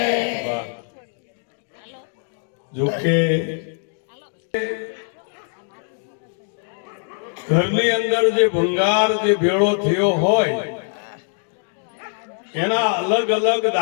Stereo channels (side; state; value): right; silent; 55 dB below the other